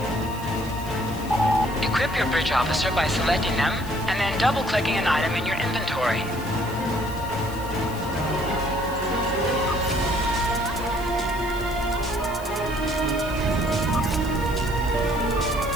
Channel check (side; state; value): left; noise; hiss, 17 dB below the sound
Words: Equip your bridge officer by selecting them and then double-clicking an item in your inventory.